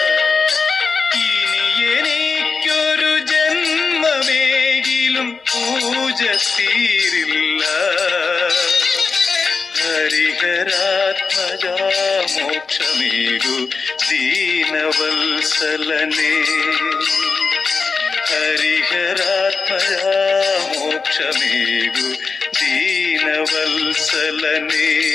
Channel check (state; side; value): quieter; right; 4.7 dB